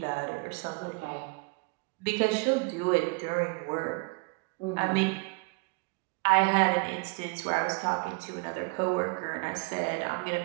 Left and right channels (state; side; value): quieter; left; 29.8 dB